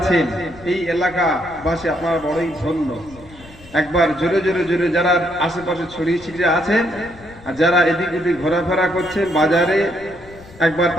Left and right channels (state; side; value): noise; left; rumble, 21 dB below the sound